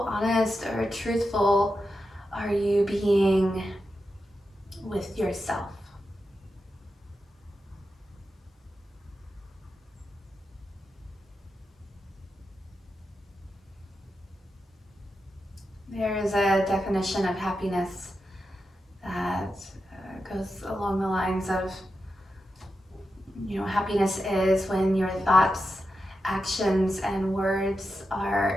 honest or truthful are you being with yourself. There is a definition of happiness that goes along the lines of, happiness is when your thoughts, actions, and words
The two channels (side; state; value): both; normal; correlation 0.89